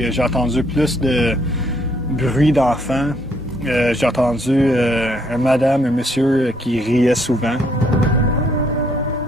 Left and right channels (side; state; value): both; normal; correlation 0.68